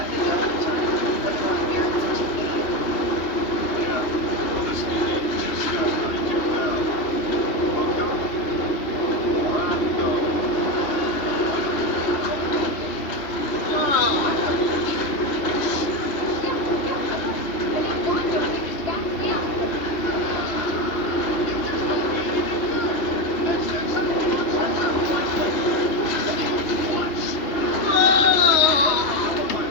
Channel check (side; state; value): right; late; 3.2 ms